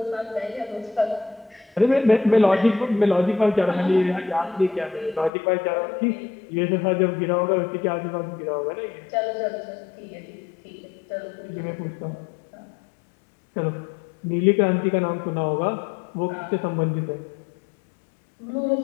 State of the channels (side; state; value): right; drops out; at 5.3 s